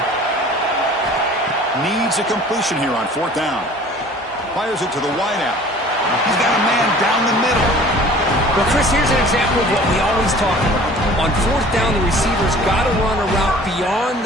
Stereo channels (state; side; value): normal; both; correlation 0.47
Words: Needs a completion here on fourth down. Fires it to the wideout. He's got a man down the middle. Well, Chris, here's an example of what we always talk about. On fourth down, the receiver's got to run a route beyond